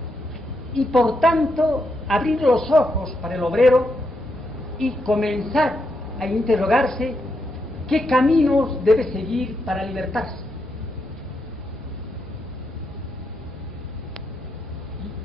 Y por tanto, abrir los ojos para el obrero y comenzar a interrogarse qué caminos debe seguir para libertarse.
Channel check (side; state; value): both; normal; correlation 0.82